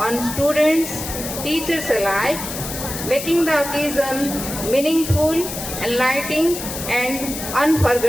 students, teachers alike, making the occasion meaningful, enlightening and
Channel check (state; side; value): noise; left; hiss, 7 dB below the sound